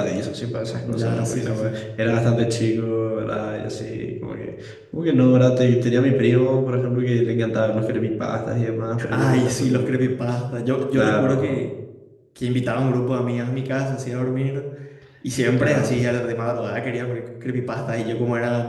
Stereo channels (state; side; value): identical; both; correlation 1.00